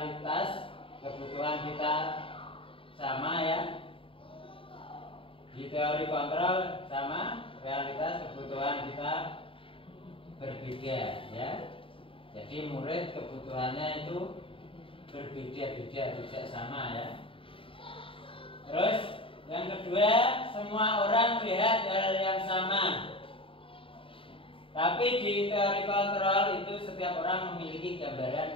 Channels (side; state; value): right; late; 0.26 ms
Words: kebutuhan kita sama ya. Di teori kontrol sama, realitas kebutuhan kita berbeda ya. Jadi murid kebutuhannya itu berbeda-beda, tidak sama ya. Terus yang kedua, semua orang melihat hal yang sama. Tapi di teori kontrol itu setiap orang memiliki